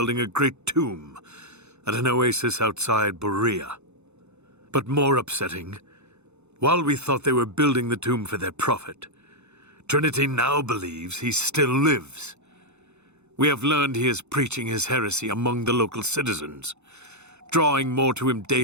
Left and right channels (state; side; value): late; left; 0.82 ms